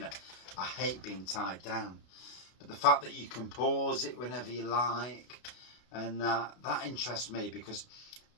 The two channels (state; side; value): late; right; 33 ms